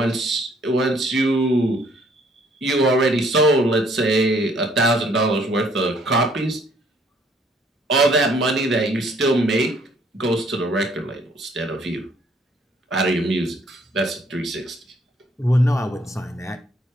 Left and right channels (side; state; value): both; normal; correlation 0.64